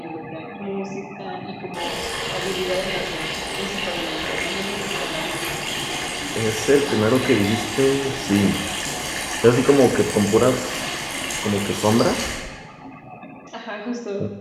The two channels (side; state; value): both; identical; correlation 1.00